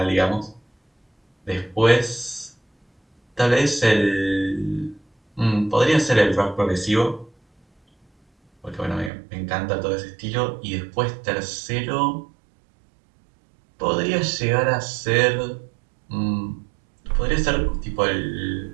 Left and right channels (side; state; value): left; drops out; at 9.1 s